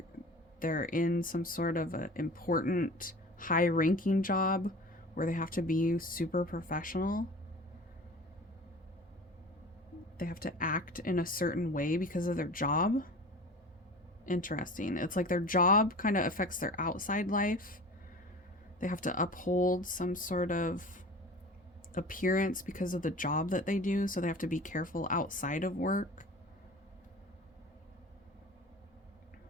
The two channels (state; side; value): normal; both; correlation 0.38